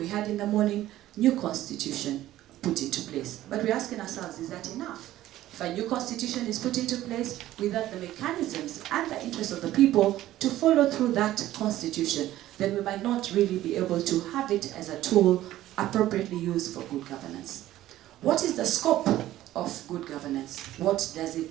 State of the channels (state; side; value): quieter; left; 14.3 dB